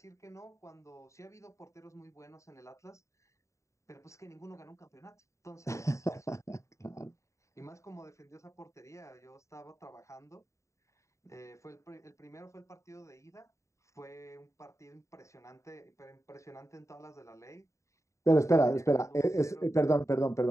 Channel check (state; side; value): late; right; 0.14 ms